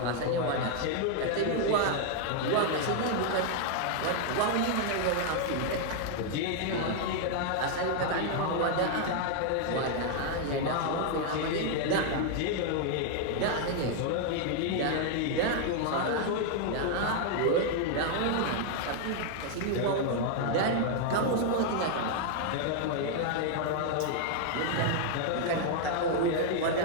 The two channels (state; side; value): different; both; correlation 0.00